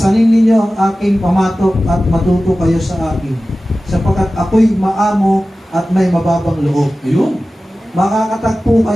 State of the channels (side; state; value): both; normal; correlation 0.95